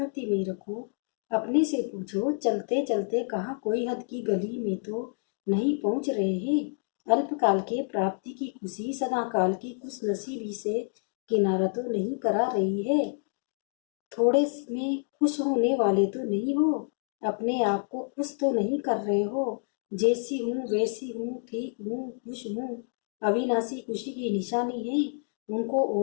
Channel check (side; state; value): right; silent; 59 dB below the other